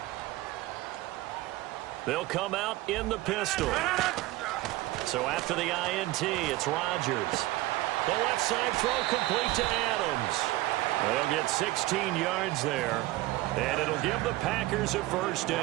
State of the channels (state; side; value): quieter; left; 18.0 dB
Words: They'll come out in the pistol. So after the INT, it's Rodgers. The left side throw complete to Adams. They'll get 16 yards there, and it'll give the Packers a first